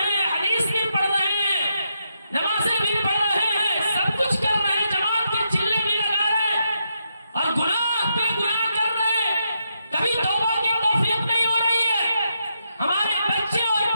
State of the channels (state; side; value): inverted; both; correlation -0.82